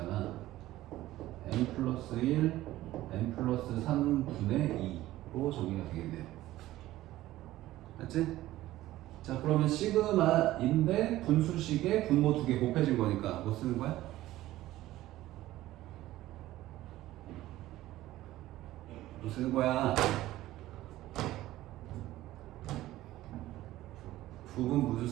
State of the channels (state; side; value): quieter; left; 15.6 dB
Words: n 플러스 1, n 플러스 3분의 2로 정리가 되겠네요. 맞지? 자, 그러면 시그마인데 분수식에 분모 두 개 곱해진 거니까 뭐 쓰는 거야? 뭐 쓰는 거야? 부분 분수